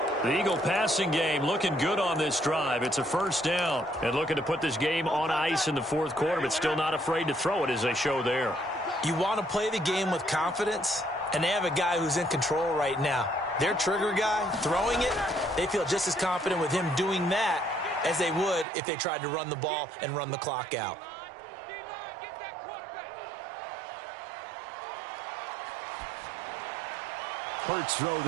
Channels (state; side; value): drops out; left; at 18.7 s